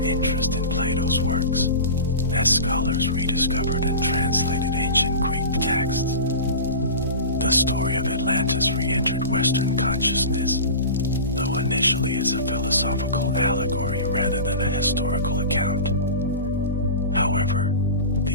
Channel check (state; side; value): inverted; both; correlation -0.32